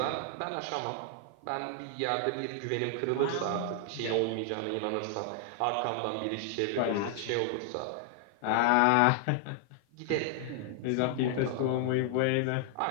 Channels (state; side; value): different; both; correlation 0.00